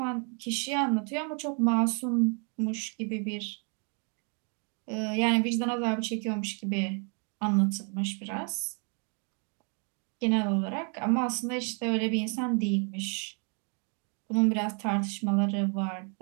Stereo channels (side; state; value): left; quieter; 37.9 dB